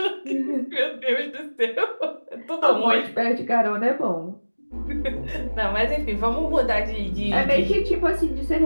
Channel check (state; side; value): inverted; both; correlation -1.00